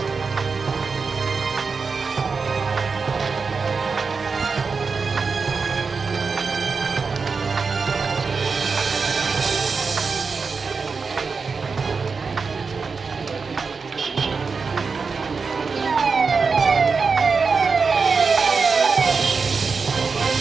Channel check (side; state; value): left; quieter; 4.9 dB